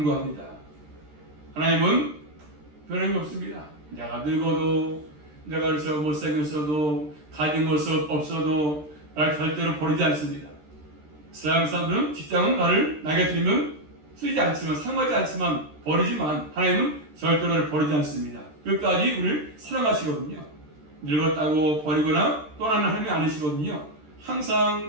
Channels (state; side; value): late; left; 13 ms